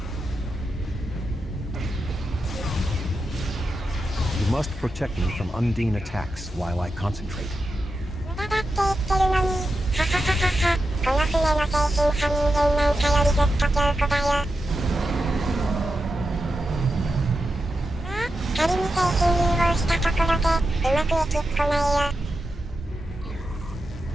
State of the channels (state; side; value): normal; both; correlation 0.89